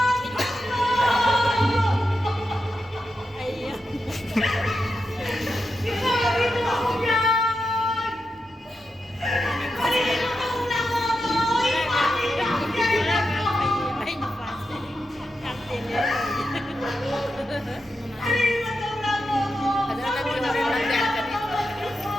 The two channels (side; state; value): both; normal; correlation 0.88